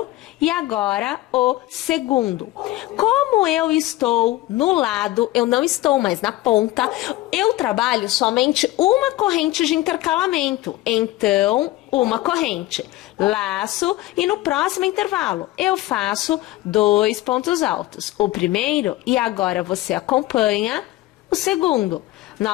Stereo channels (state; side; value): quieter; right; 17.0 dB